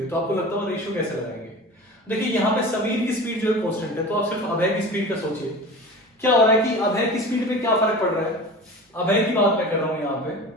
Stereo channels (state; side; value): normal; both; correlation 0.35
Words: तो आपको लगता है रेशियो कैसे लगाएंगे। देखिए यहाँ पे समीर की स्पीड जो है कांस्टेंट है, तो आप सिर्फ अभय की स्पीड का सोचिए। क्या हो रहा है कि अभय की स्पीड पे क्या फर्क पड़ रहा है, अभय की बात मैं कर रहा हूं यहाँ पे,